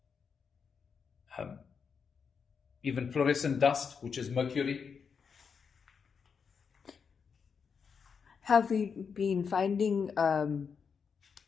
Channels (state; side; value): quieter; right; 6.1 dB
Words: even fluorescent dust, which is mercury. Have we been finding